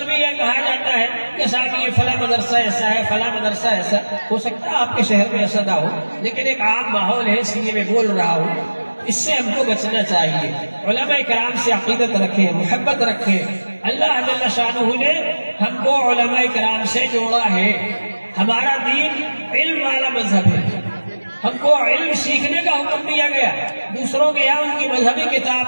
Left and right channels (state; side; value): inverted; both; correlation -1.00